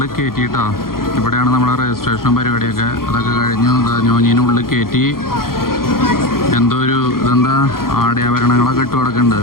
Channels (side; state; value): right; late; 0.92 ms